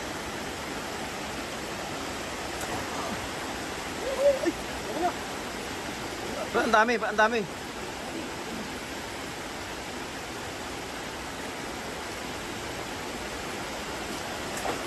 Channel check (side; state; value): both; identical; correlation 1.00